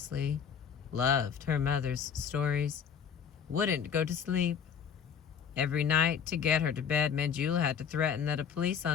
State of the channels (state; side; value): quieter; right; 7.4 dB